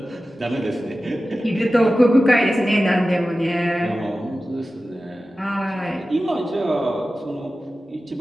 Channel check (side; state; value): both; normal; correlation 0.95